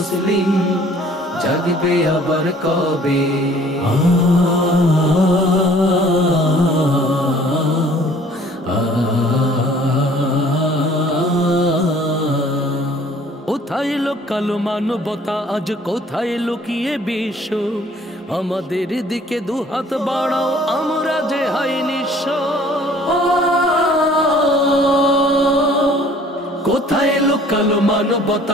জাগবে আবার কবে? কোথায় কালো মানবতা, আজ কোথায় লুকিয়ে বিশ্ব? আমাদের দিকে দুহাত বাড়াও, আমরা যে হাই নিঃস্ব। কোথায় কালো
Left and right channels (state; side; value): normal; both; correlation 0.54